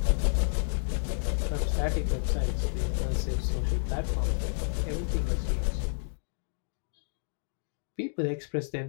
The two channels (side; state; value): right; silent; digital silence